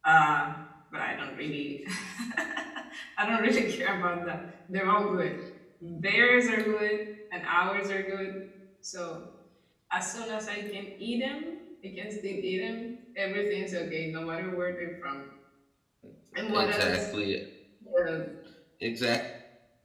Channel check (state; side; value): identical; both; correlation 1.00